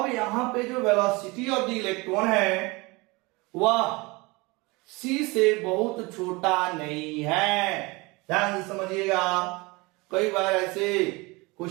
यहां पे जो वेलोसिटी ऑफ द इलेक्ट्रॉन है वह c से बहुत छोटा नहीं है, ध्यान से समझिएगा। कई बार ऐसे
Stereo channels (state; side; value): quieter; left; 24.9 dB